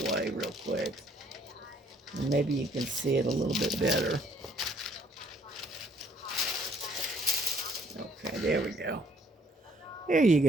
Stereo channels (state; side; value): normal; both; correlation 0.63